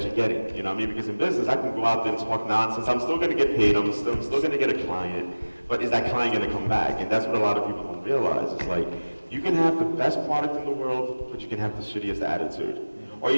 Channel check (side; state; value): both; inverted; correlation -1.00